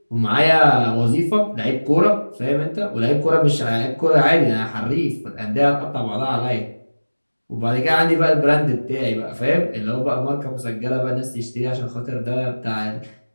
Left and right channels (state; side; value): inverted; both; correlation -1.00